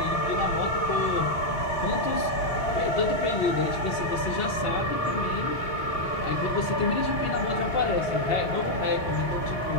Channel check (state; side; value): late; right; 3.8 ms